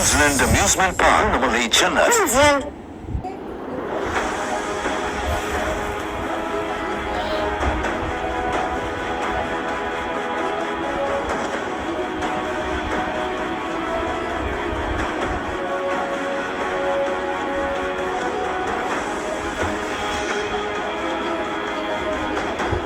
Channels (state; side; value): identical; both; correlation 1.00